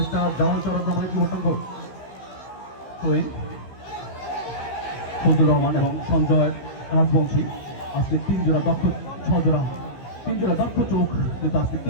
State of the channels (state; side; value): late; right; 15 ms